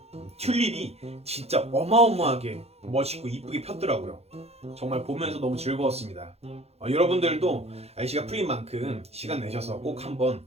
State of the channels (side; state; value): left; late; 0.30 ms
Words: 튤립이 진짜 어마어마하게 멋있고 이쁘게 폈더라고요. 정말 보면서 너무 즐거웠습니다. 여러분들도 날씨가 풀린 만큼 시간 내셔서 꼭 한번